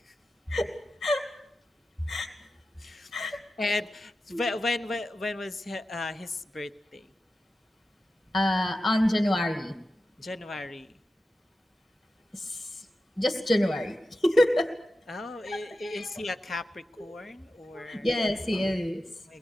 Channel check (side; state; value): both; normal; correlation 0.92